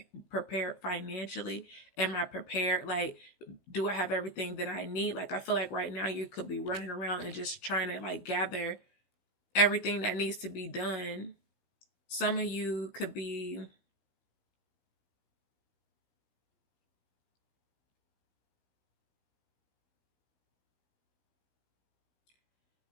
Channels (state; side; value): late; right; 17 ms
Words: prepared financially? Am I prepared? Like, do I have everything that I need? Like, I feel like right now you could be running around and just trying to like gather everything that needs to be done. Some of you could be,